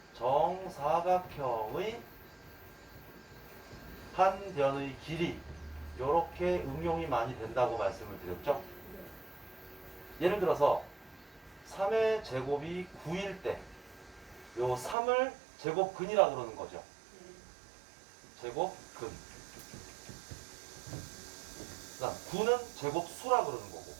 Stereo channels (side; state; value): left; drops out; at 15.0 s